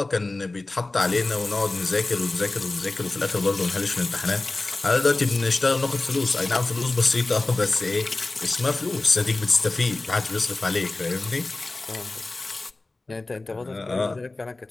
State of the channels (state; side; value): quieter; right; 3.1 dB